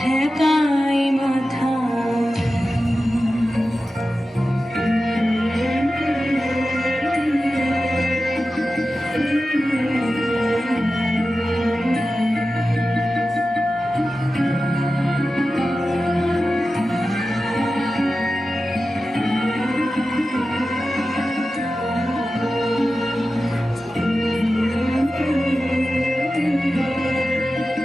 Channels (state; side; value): normal; both; correlation 0.93